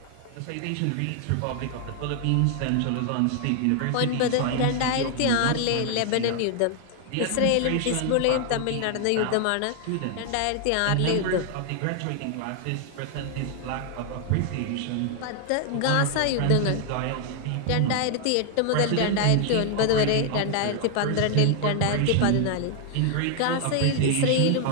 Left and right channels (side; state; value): both; different; correlation 0.00